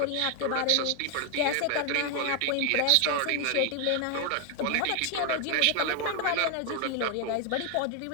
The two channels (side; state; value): both; different; correlation 0.01